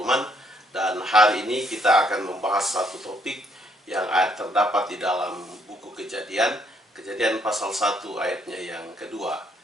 Dan hari ini kita akan membahas satu topik yang terdapat di dalam buku Kejadian, Kejadian pasal 1 ayatnya yang kedua,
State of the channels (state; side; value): normal; both; correlation 0.69